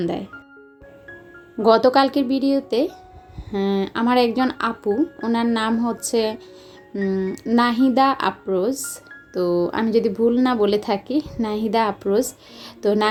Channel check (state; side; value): identical; both; correlation 1.00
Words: গতকালকের ভিডিওতে আমার একজন আপু, ওনার নাম হচ্ছে নাহিদা আফরোজ, তো আমি যদি ভুল না বলে থাকি নাহিদা আফরোজ। তো